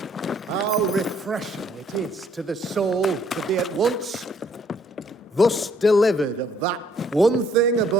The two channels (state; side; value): normal; both; correlation 0.64